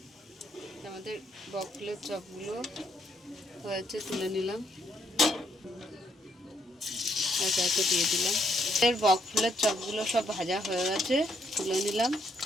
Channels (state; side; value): normal; both; correlation 0.72